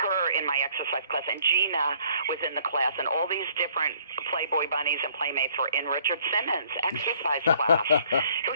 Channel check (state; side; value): inverted; both; correlation -0.60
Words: in my exercise class, and Gina was in the class, and all these different Playboy bunnies and playmates were in Richard Simmons' exercise class. It